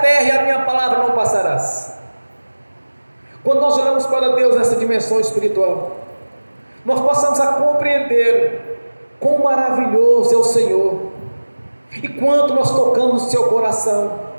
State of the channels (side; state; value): both; inverted; correlation -1.00